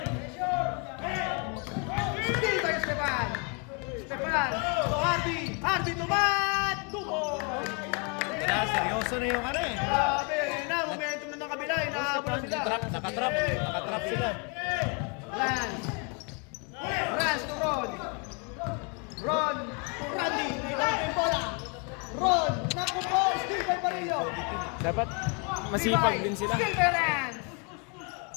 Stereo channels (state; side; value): quieter; right; 34.1 dB